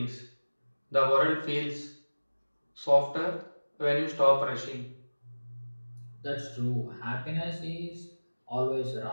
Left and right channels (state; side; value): inverted; both; correlation -1.00